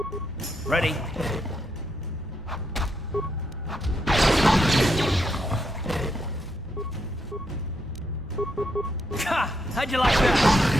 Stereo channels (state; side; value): normal; both; correlation 0.79